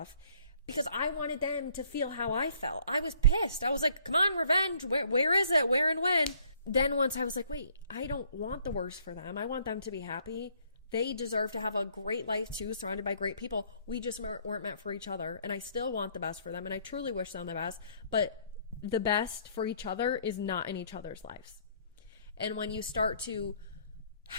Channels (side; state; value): both; inverted; correlation -0.62